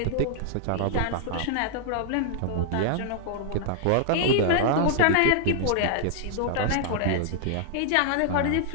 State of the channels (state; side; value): different; both; correlation -0.01